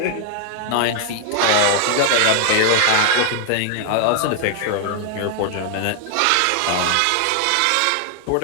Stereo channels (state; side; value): different; both; correlation 0.00